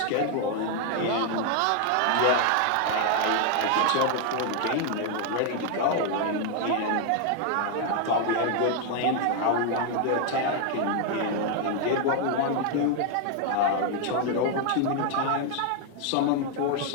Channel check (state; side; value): different; both; correlation 0.00